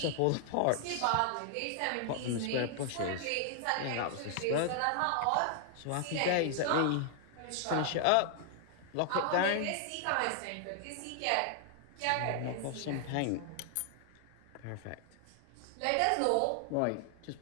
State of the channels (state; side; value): different; both; correlation 0.00